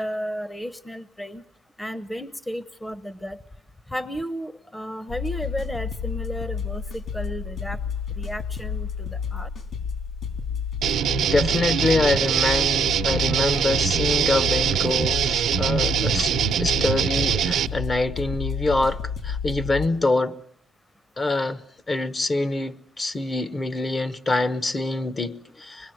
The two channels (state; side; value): normal; both; correlation 0.72